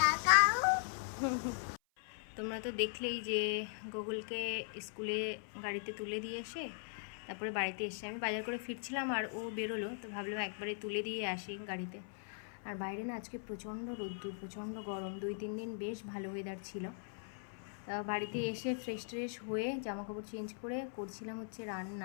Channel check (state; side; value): silent; right; 51 dB below the other